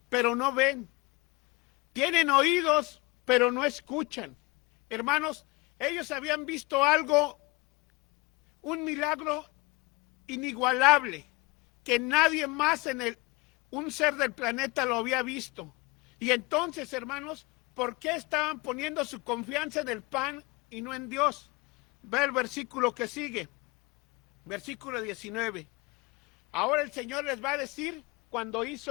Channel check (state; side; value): quieter; right; 24.9 dB